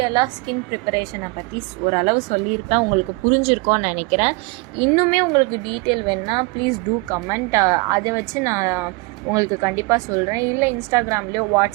ஸ்கின் ப்ரிப்பரேஷனை பற்றி ஓரளவு சொல்லியிருப்பேன். உங்களுக்கு புரிஞ்சிருக்கோன்னு நினைக்கிறேன். இன்னுமே உங்களுக்கு டீட்டெயில் வேணுன்னா ப்ளீஸ் டூ கமெண்ட். அதை வச்சு நான் உங்களுக்கு கண்டிப்பாக சொல்கிறேன். இல்லை இன்ஸ்டாகிராம்லேயோ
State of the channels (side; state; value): left; quieter; 26.6 dB